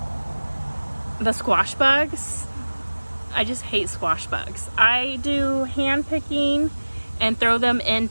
the squash bugs. I just hate squash bugs. I do hand picking and throw them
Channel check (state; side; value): inverted; both; correlation -1.00